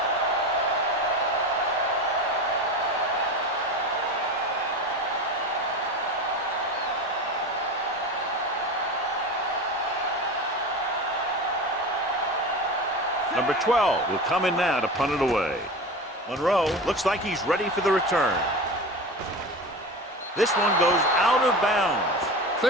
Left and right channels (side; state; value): both; normal; correlation 0.29